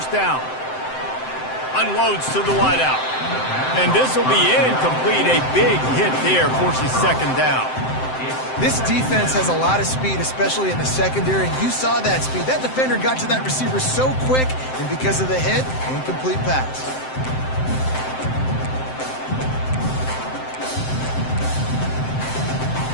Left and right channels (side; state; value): right; late; 7.7 ms